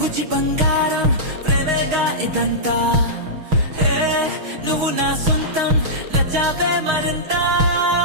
బంగారం ప్రేమేగా ఇదంతా. హే నువ్వు నా సొంతం, నచ్చావే మరింత.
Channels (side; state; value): left; late; 6.4 ms